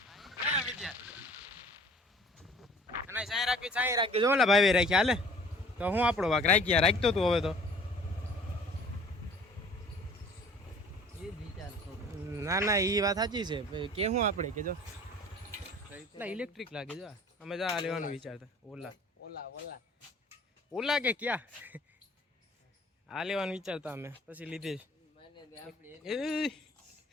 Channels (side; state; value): both; normal; correlation 0.50